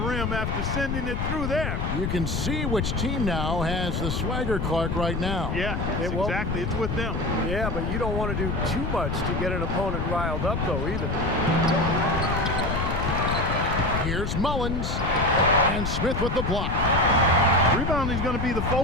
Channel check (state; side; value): noise; left; rumble, 1 dB below the sound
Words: rim after sending it through there. You can see which team now has the swagger, Clark, right now. Yeah, exactly. It's with them. Yeah, but you don't want to do too much to get an opponent riled up, though, either. Here's Mullins, and Smith with the block. Rebounding is going to be the